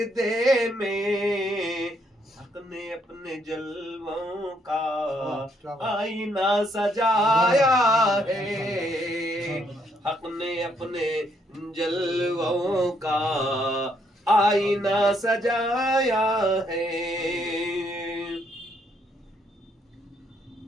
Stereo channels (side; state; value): both; normal; correlation 0.72